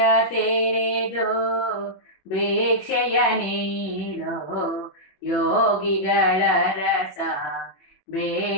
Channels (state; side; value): late; right; 21 ms